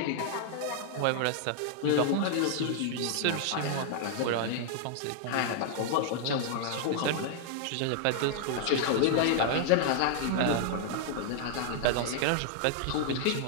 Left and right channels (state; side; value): different; both; correlation -0.01